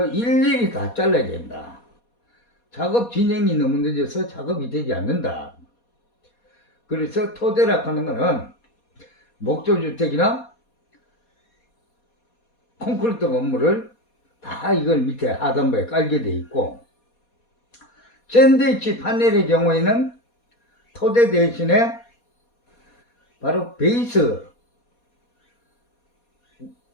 일일이 다 잘라야 된다. 작업 진행이 너무 늦어서 작업이 되지 않는다. 그래서 토대라 하는 거는 목조주택이나 콘크리트 건물을 다 이걸 밑에 하단부에 깔게 돼 있고 샌드위치 파넬의 경우에는 토대 대신에 바로 베이스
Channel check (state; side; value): late; right; 4.2 ms